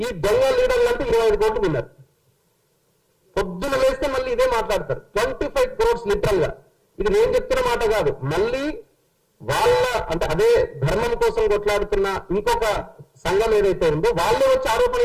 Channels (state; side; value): identical; both; correlation 1.00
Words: ఈ దొంగ లీడర్లు అంటే 25 కోట్లు విన్నారు. పొద్దున వేస్తే మళ్ళీ ఇదే మాట్లాడతారు. 25 crores లిటరల్ గా. ఇది నేను చెప్తున్న మాట కాదు, మళ్ళీ వాళ్ళ అంటే అదే ధర్మం కోసం కొట్లాడుతున్న ఇంకొక సంఘం ఏదైతే ఉందో వాళ్ళే వచ్చి ఆరోపణ